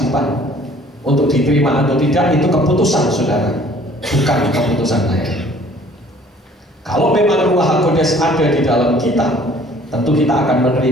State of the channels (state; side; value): normal; both; correlation 0.54